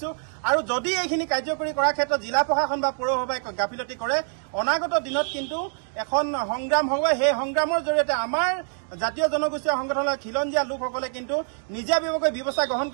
আৰু যদি এইখিনি কাৰ্যকৰী কৰাৰ ক্ষেত্ৰত জিলা প্ৰশাসন বা পৌৰসভাই গাফিলতি কৰে অনাগত দিনত কিন্তু এখন সংগ্ৰাম হ'ব সেই সংগ্ৰামৰ জৰিয়তে আমাৰ জাতীয় জনগোষ্ঠীয় সংগঠনৰ খিলঞ্জীয়া লোকসকলে কিন্তু নিজাববীয়াকৈ ব্যৱস্থা গ্ৰহণ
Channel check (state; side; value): silent; left; digital silence